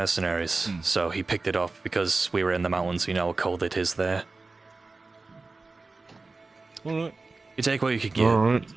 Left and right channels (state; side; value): quieter; left; 3.7 dB